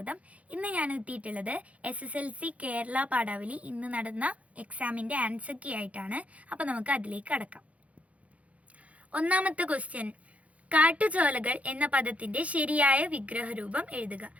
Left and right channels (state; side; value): late; left; 0.066 ms